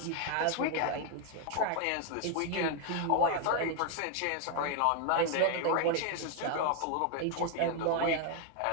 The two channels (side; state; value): both; different; correlation 0.01